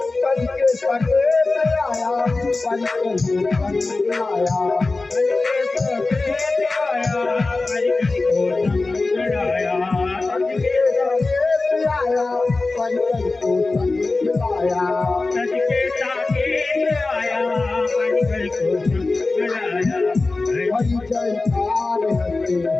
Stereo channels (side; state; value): right; quieter; 3.5 dB